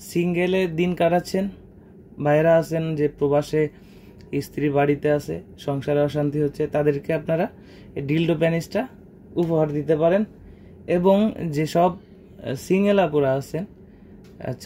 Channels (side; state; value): both; identical; correlation 1.00